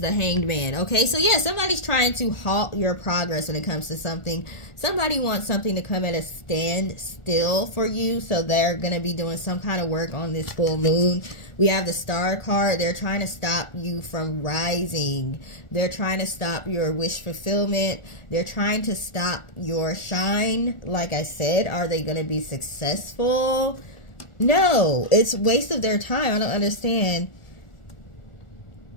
Hanged Man. Okay, so yeah, somebody's trying to halt your progress when it comes to something. Somebody wants something to come at a standstill for you, so they're going to be doing some kind of work on this full moon. We have the Star card. They're trying to stop you from rising. They're trying to stop your wish fulfillment. They're trying to stop your shine. Like I said, are they going to be successful? No, it's a waste of their time. I don't understand.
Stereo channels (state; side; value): late; right; 1.4 ms